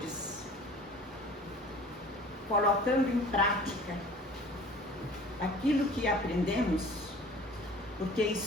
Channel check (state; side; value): normal; both; correlation 0.46